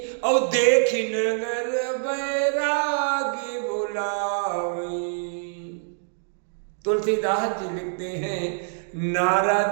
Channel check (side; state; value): left; silent; digital silence